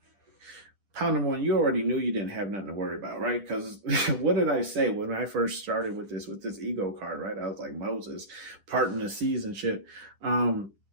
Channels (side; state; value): left; late; 10 ms